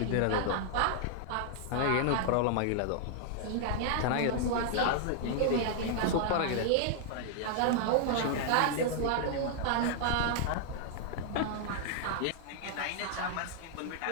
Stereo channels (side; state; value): both; different; correlation -0.01